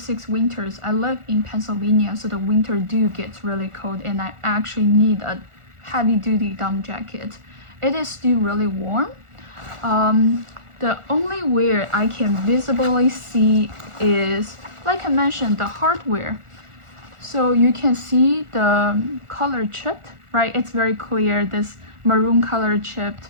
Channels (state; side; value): late; left; 1.4 ms